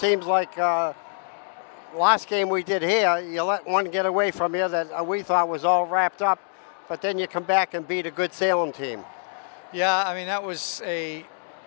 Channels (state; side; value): silent; right; 62 dB below the other